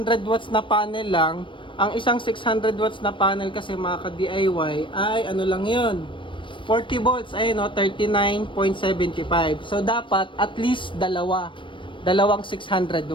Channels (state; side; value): late; right; 0.24 ms